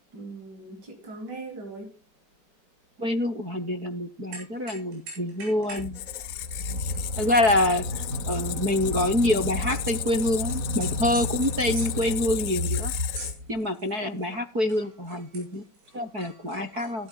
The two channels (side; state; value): left; late; 4.3 ms